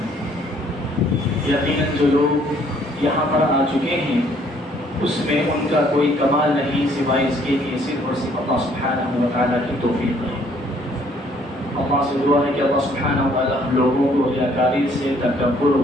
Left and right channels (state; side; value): normal; both; correlation 0.63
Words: یقیناً جو لوگ یہاں پر آ چکے ہیں اس میں ان کا کوئی کمال نہیں سوائے اس کے کہ صرف اور صرف اللہ سبحانہ و تعالیٰ کی توفیق ہے۔ اللہ سے دعا ہے کہ اللہ سبحانہ و تعالیٰ ہم لوگوں کو ریاکاری سے، تکبر،